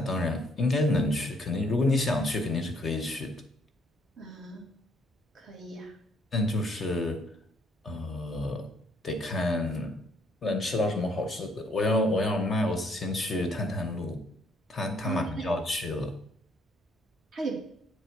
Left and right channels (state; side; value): normal; both; correlation 0.67